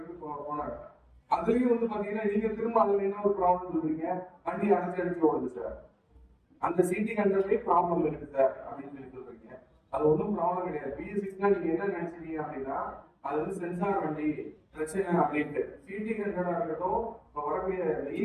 போனாங்க. அதுலயும் வந்து பாத்தீங்கன்னா நீங்க திரும்ப அதுல என்ன ஒரு ப்ராப்ளம் சொல்றீங்க, வண்டி அடிச்சு ஓடுது சார், அந்த சிடி 100லயே ப்ராப்ளம் இருக்கு சார் அப்படின்னு சொல்லி சொல்றீங்க. அது ஒன்றும் ப்ராப்ளம் கிடையாது. பிஎஸ்சிக்ஸ்னா நீங்க என்ன நினைச்சீங்க அப்படின்னா அது வந்து சென்சார் வண்டி பிரச்சனை அப்படின்ட்டு. சிடி 100 இருக்கட்டும், இப்ப வரக்கூடிய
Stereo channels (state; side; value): identical; both; correlation 1.00